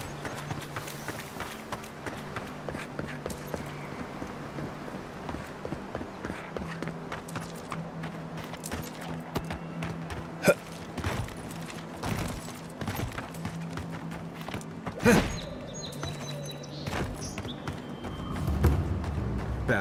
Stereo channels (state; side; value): identical; both; correlation 1.00